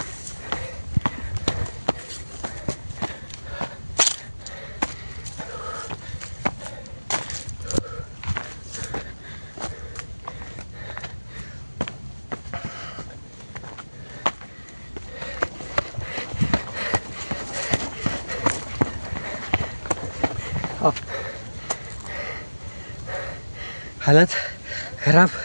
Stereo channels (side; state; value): both; inverted; correlation -1.00